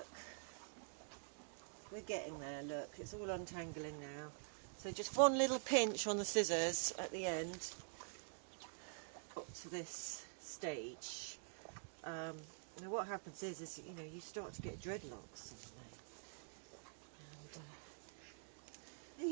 We're getting there, look, it's all untangling now. So just one little pinch on the scissors at the end, up to this stage. Now what happens is you know, you start to get dreadlocks. And, are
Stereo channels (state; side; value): silent; left; digital silence